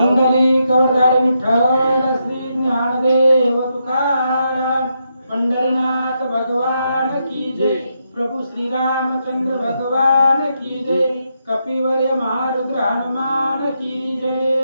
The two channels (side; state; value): both; inverted; correlation -0.81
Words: कवरधारी विठ्ठल श्री ज्ञानदेव तुकाराम पंढरीनाथ भगवान की जय। प्रभु श्री रामचंद्र भगवान की जय। कपिवर्य महारुद्र हनुमान की